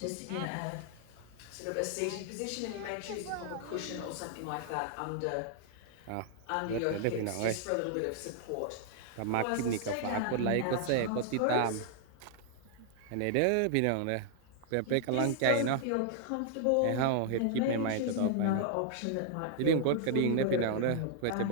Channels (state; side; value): different; both; correlation -0.01